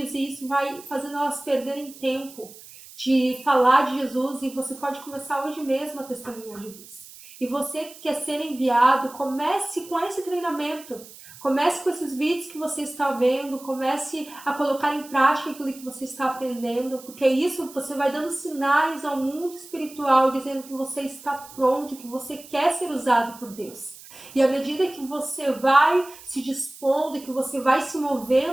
e isso vai fazendo elas perderem tempo de falar de Jesus, e você pode começar hoje mesmo a testemunhar Jesus. E você que quer ser enviado, comece com esse treinamento. Comece com esses vídeos que você está vendo, comece a colocar em prática aquilo que você está aprendendo, porque isso você vai dando sinais ao mundo espiritual, dizendo que você está pronto, que você quer ser usado por Deus. E à medida que você vai se dispondo e que você vai se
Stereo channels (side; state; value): right; noise; hiss, 19 dB below the sound